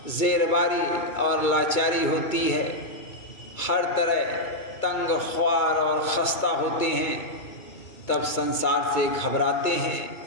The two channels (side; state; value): right; late; 2.2 ms